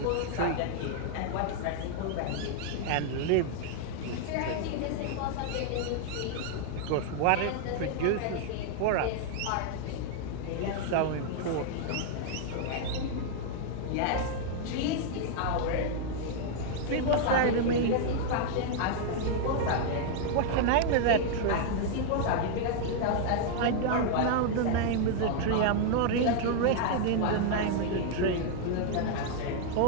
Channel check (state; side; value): different; both; correlation 0.00